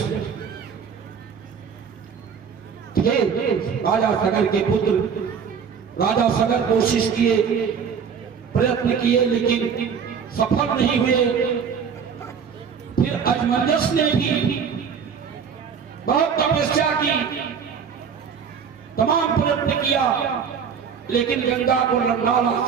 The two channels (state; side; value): quieter; left; 6.7 dB